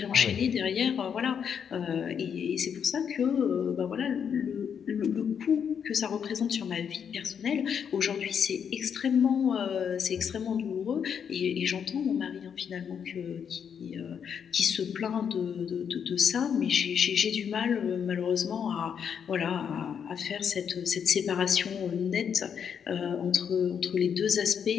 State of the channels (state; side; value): quieter; right; 7.6 dB